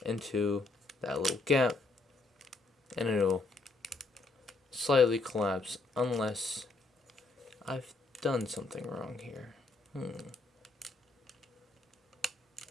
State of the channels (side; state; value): right; quieter; 3.5 dB